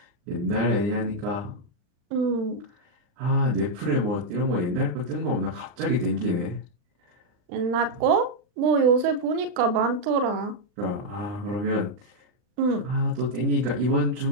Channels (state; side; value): late; left; 39 ms